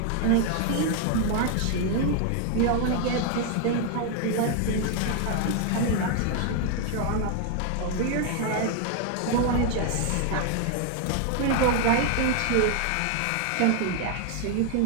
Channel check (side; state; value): both; different; correlation 0.00